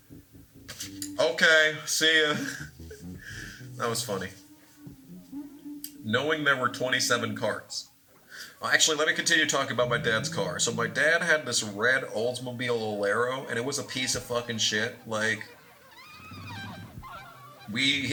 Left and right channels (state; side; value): identical; both; correlation 1.00